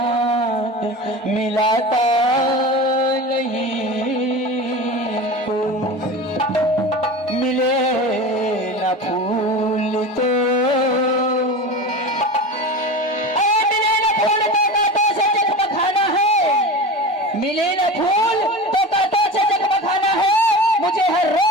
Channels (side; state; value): both; normal; correlation 0.30